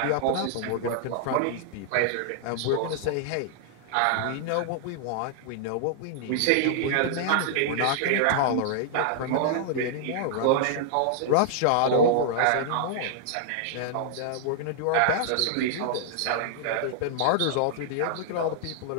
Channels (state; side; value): different; both; correlation -0.01